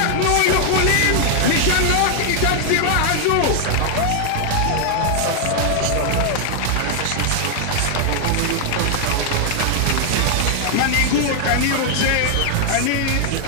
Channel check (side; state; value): both; different; correlation 0.00